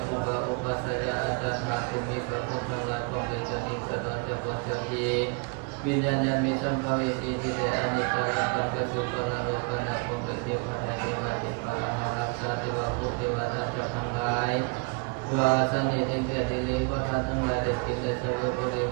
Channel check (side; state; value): left; quieter; 32.2 dB